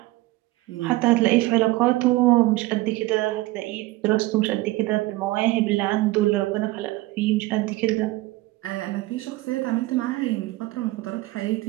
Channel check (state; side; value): quieter; left; 19.2 dB